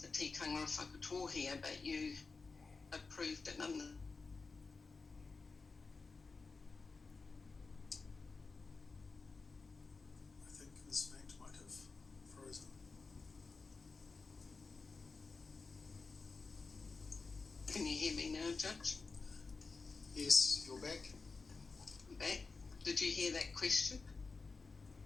the tikanga of Whakatohea, but you approved it nonetheless? I think Ms. Feint might have frozen. Can you hear me now, Judge? Yes, you're back. Back? Did you hear that question?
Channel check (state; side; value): quieter; right; 4.3 dB